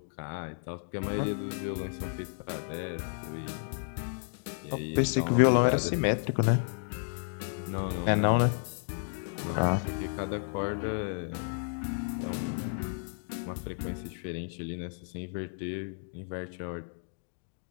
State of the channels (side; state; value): right; silent; digital silence